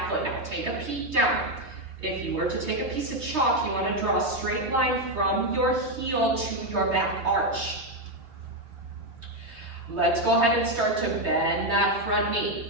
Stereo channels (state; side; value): late; left; 3.2 ms